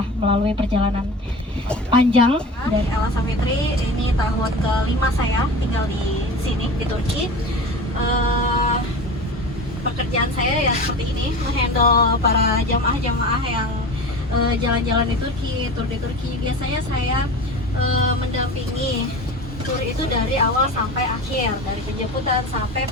melalui perjalanan panjang dari Ella Safitri, ini tahun kelima saya tinggal di sini di Turki. Pekerjaan saya ya seperti ini, menghandle para jamaah-jamaah yang jalan-jalan di Turki, tur di Turki. Biasanya saya mendampingi tur itu dari awal sampai akhir, dari penjemputan sampai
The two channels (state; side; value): normal; both; correlation 0.33